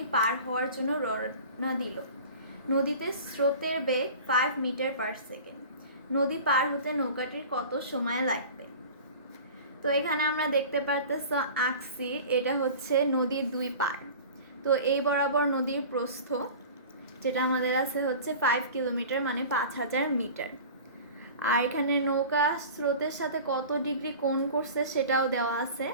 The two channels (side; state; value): both; inverted; correlation -0.39